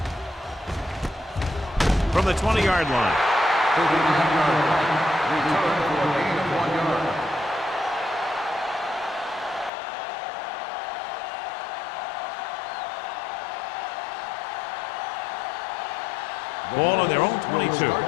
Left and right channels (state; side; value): drops out; right; at 9.7 s